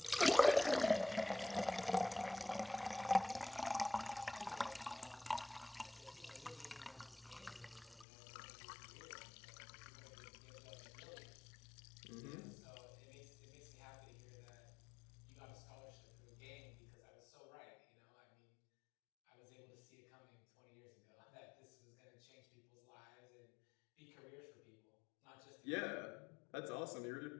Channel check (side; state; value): right; drops out; at 8.1 s